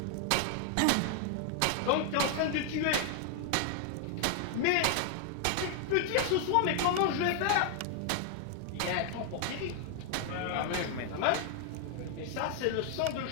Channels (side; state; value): both; different; correlation 0.00